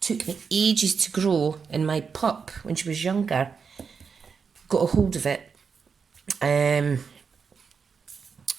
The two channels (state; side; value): quieter; left; 5.8 dB